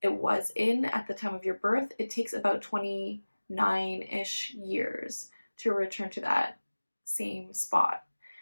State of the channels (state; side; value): inverted; both; correlation -1.00